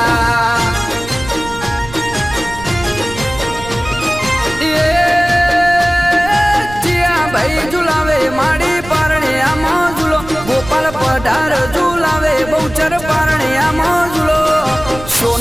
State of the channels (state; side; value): noise; right; rumble, 14 dB below the sound